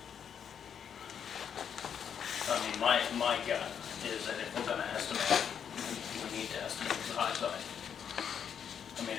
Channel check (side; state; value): right; quieter; 7.9 dB